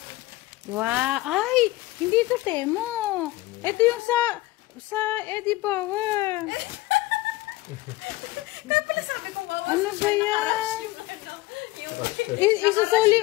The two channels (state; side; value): quieter; right; 18.6 dB